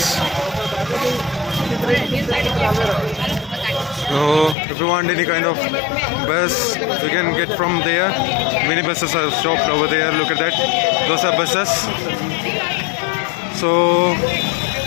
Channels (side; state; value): right; drops out; at 4.5 s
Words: So if you want any kind of bus, you can get from there. Many buses are stopped over there. Look at that. Those are buses. So